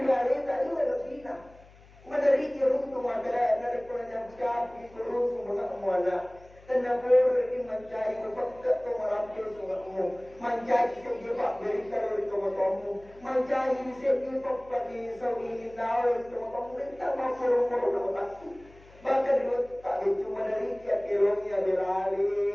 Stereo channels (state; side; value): noise; left; hum, 24 dB below the sound